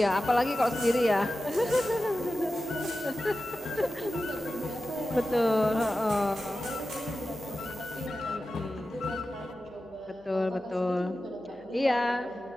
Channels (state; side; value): noise; left; hum, 29 dB below the sound